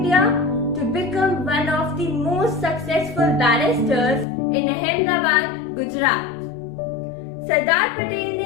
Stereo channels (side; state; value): right; drops out; at 4.2 s